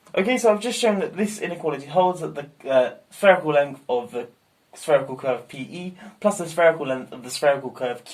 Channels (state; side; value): identical; both; correlation 1.00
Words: Okay, so I've just shown that this inequality holds, that the spherical length of the spherical curve PE plus the spherical length of the spherical curve